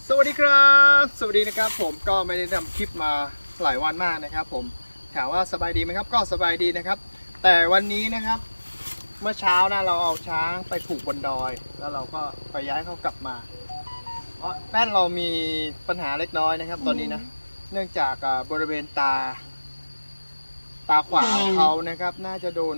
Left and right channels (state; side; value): inverted; both; correlation -1.00